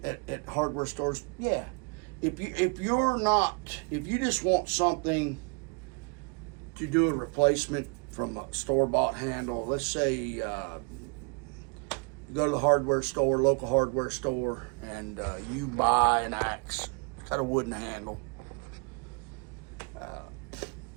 at hardware stores? Yeah. If you just want something to do a replacement from a store-bought handle, let's say you go to the hardware store, local hardware store, and you buy an axe. It's got a wooden handle.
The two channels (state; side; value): quieter; left; 34.8 dB